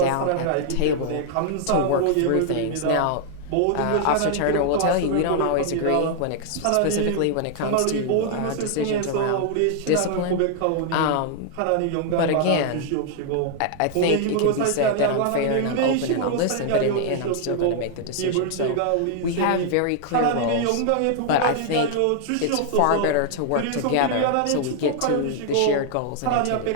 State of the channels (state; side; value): different; both; correlation 0.00